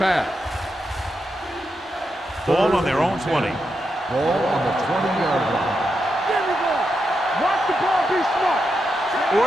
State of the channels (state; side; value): normal; both; correlation 0.85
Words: Ball on their own 20. Ball on the 20-yard line. There we go. Watch the ball. Be smart.